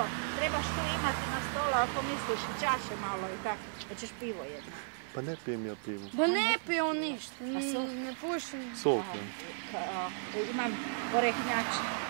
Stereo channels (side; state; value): left; silent; 55 dB below the other